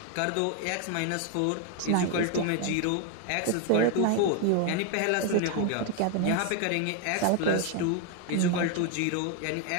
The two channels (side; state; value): both; different; correlation 0.01